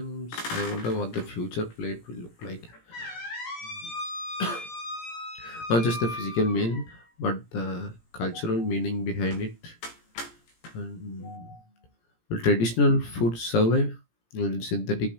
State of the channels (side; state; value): right; late; 17 ms